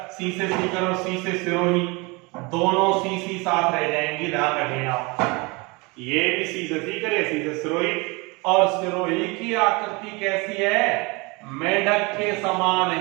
सी से सीकर और सी से सिरोही, दोनों सी साथ रह जाएंगी, ध्यान रखें आप। ये भी सी से सीकर है, सी से सिरोही। और सिरोही की आकृति कैसी है, मेढक के समान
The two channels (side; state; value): left; quieter; 27.0 dB